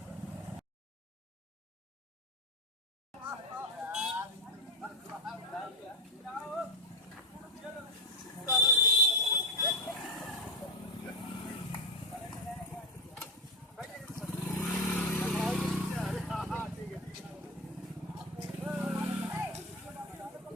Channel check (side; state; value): both; normal; correlation 0.13